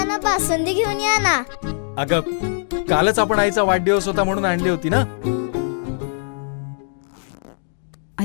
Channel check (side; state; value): right; silent; digital silence